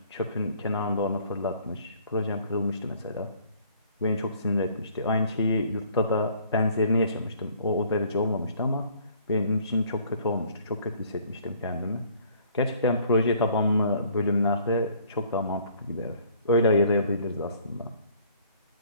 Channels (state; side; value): inverted; both; correlation -0.58